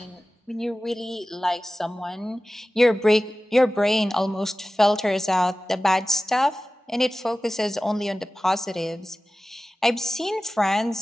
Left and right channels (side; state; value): both; normal; correlation 0.96